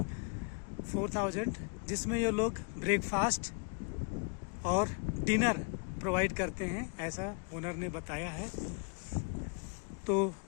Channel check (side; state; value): right; quieter; 37.3 dB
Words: 4000, जिसमें ये लोग ब्रेकफास्ट और डिनर प्रोवाइड करते हैं, ऐसा ओनर ने बताया है। तो